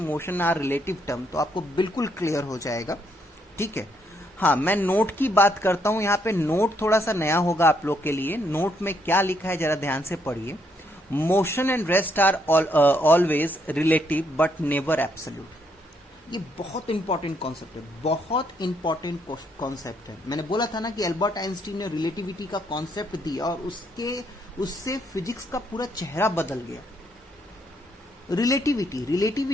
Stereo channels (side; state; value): both; normal; correlation 0.73